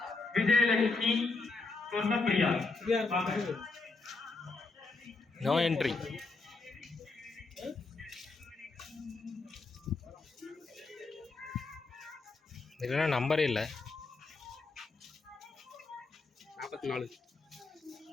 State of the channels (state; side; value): quieter; right; 3.8 dB